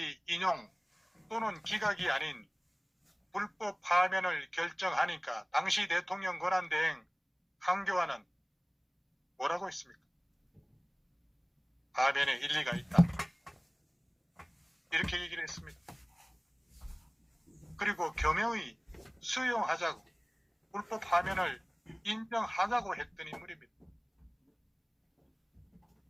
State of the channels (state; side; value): identical; both; correlation 1.00